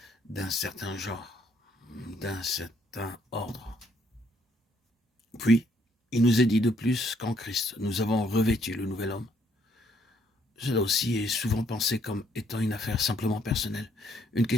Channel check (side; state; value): both; normal; correlation 0.68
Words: d'un certain genre, d'un certain ordre. Puis, il nous est dit de plus qu'en Christ, nous avons revêtu le nouvel homme. Cela aussi est souvent pensé comme étant une affaire simplement personnelle, une